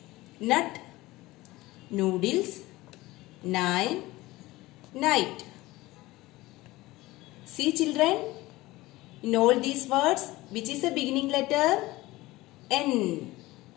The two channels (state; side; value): quieter; right; 19.1 dB